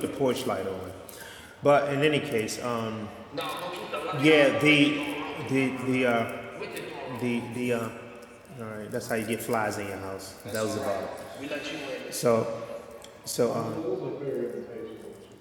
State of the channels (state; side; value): identical; both; correlation 1.00